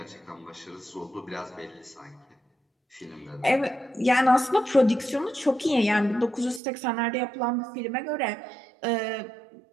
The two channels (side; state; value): left; drops out; at 6.6 s